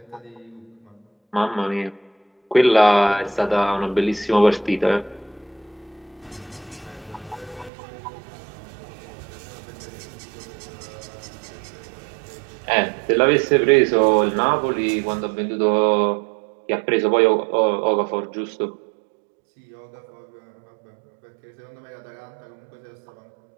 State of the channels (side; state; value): left; drops out; at 7.7 s